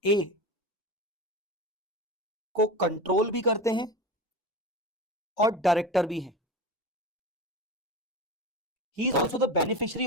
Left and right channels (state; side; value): normal; both; correlation 0.28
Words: ए को कंट्रोल भी करते हैं और डायरेक्टर भी हैं। He is also the beneficiary